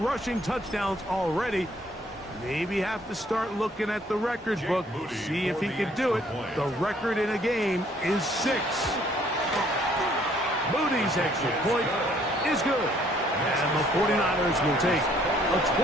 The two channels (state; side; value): normal; both; correlation 0.63